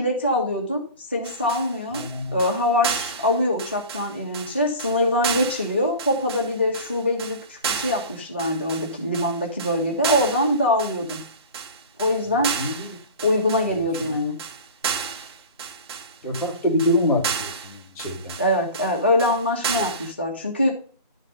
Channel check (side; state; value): both; inverted; correlation -0.35